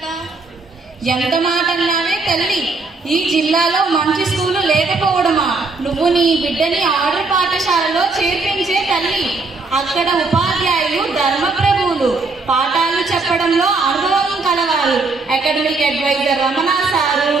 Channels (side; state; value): left; quieter; 3.7 dB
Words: ఎంత మాట అన్నావే తల్లి, ఈ జిల్లాలో మంచి స్కూలు లేకపోవడమా? నువ్వు నీ బిడ్డని ఆర్డర్ పాఠశాలలో చేర్పించే తల్లి. అక్కడ ఉపాధ్యాయులు ధర్మప్రభువులు, పాఠాలు చెప్పడంలో అనుభవం కలవారు. Academic adviser Ramana sir,